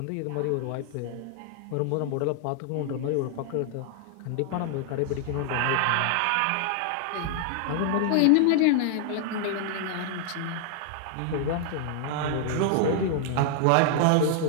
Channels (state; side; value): different; both; correlation 0.00